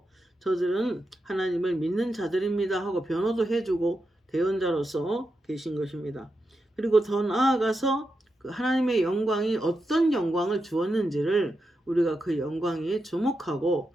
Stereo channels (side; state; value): both; normal; correlation 0.87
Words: 저들은 하나님을 믿는 자들입니다 하고 변호도 해주고 대언자로서 계신 것입니다. 그리고 더 나아가서 그 하나님의 영광이 어떤 영광을 주었는지를 우리가 그 영광에 주목하고